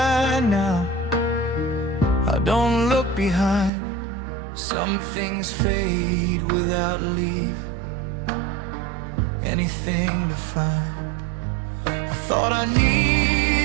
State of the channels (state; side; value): drops out; left; at 3.7 s